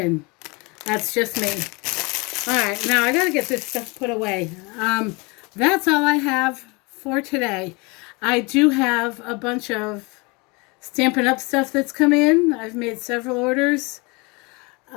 That's just me. All right, now I got to get this stuff put away. That's all I have for today. I do have a bunch of Stampin' Up stuff that's come in. I've made several orders.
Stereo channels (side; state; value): right; quieter; 27.7 dB